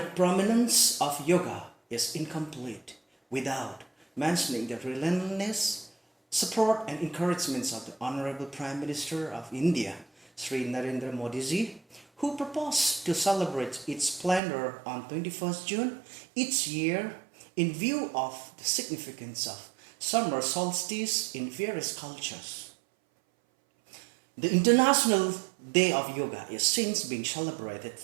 of yoga is incomplete without mentioning the relentless support and encouragements of the Honorable Prime Minister of India, Sri Narendra Modi ji, who proposed to celebrate its splendor on 21st June each year in view of the significance of summer solstice in various cultures. The International Day of Yoga is since being celebrated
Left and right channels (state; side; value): drops out; left; at 14.4 s